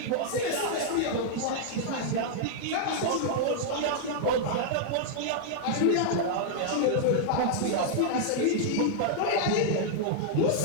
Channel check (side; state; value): both; different; correlation -0.01